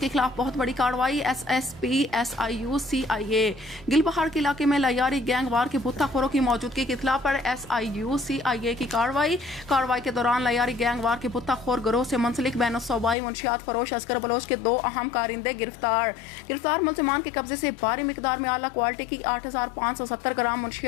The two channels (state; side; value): drops out; right; at 13.2 s